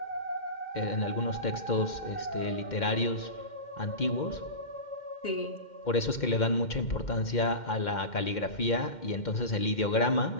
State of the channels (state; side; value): late; right; 2.1 ms